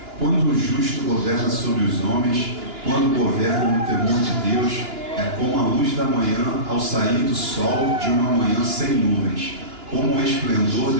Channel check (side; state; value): left; late; 2.9 ms